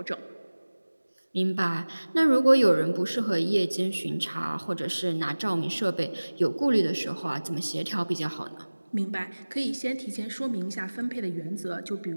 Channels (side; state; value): both; inverted; correlation -1.00